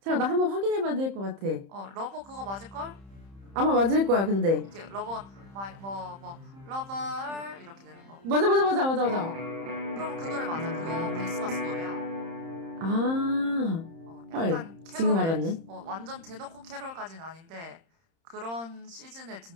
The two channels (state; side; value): late; left; 30 ms